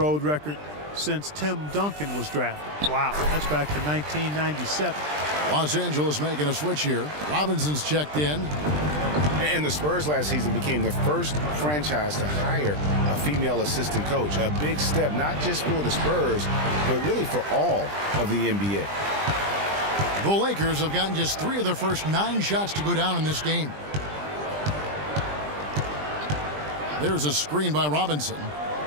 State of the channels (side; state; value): left; late; 20 ms